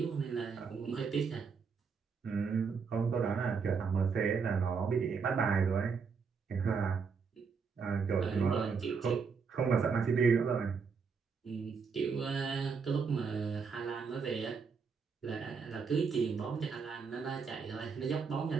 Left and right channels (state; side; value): quieter; left; 5.5 dB